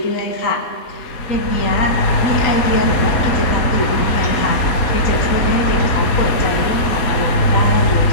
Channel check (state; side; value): late; right; 4.1 ms